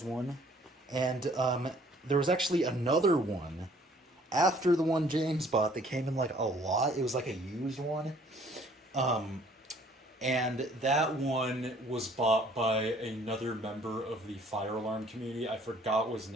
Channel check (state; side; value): normal; both; correlation 0.58